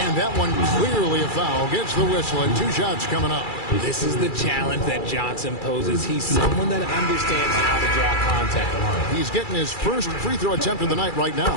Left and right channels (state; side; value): late; right; 2.3 ms